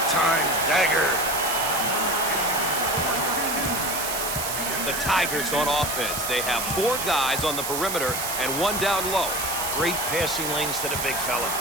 time dagger. The Tigers on offense. They have 4 guys on the perimeter and 1 down low. Great passing lanes to the big fella.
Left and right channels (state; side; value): noise; right; hiss, 3 dB below the sound